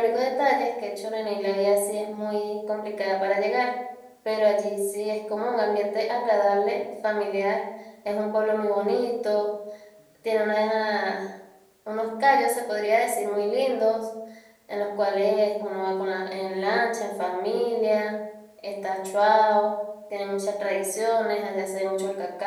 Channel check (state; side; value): identical; both; correlation 1.00